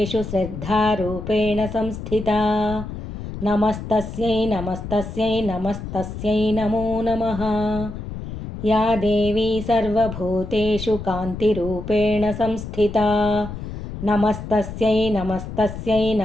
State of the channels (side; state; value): left; noise; rumble, 9 dB below the sound